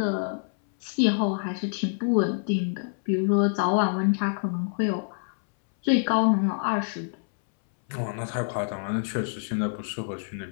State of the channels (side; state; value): right; silent; 61 dB below the other